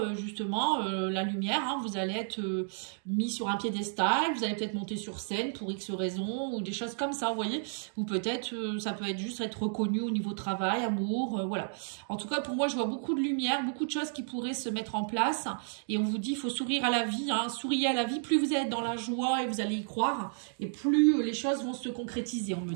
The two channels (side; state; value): left; silent; digital silence